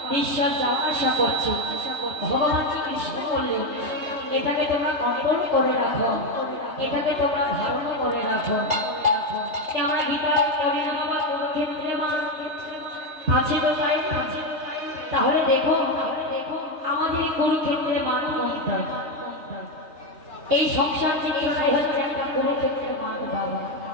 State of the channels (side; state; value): left; late; 3.3 ms